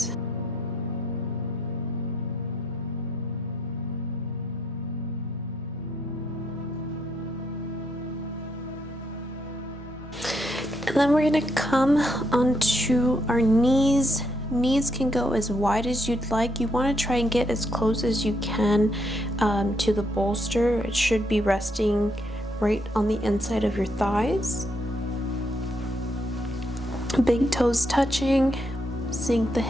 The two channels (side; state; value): both; normal; correlation 0.76